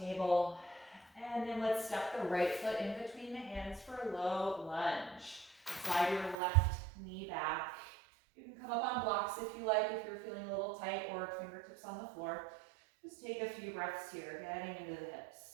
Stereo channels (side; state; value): left; drops out; at 6.4 s